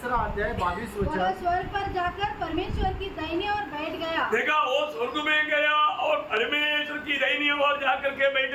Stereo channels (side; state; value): both; identical; correlation 1.00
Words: अध्याय 22 वह वचन स्वर्ग पर जाकर परमेश्वर की दाहिने ओर बैठ गया। देखा, वो स्वर्ग में गया और परमेश्वर की दाहिनी ओर जाकर के